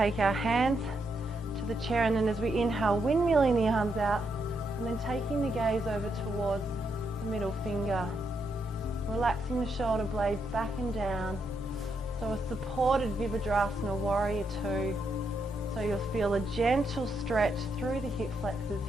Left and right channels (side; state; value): both; normal; correlation 0.80